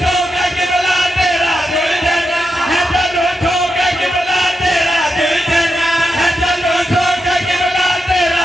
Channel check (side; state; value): both; normal; correlation 0.86